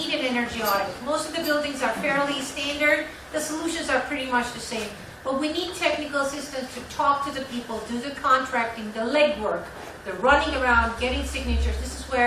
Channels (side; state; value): both; identical; correlation 1.00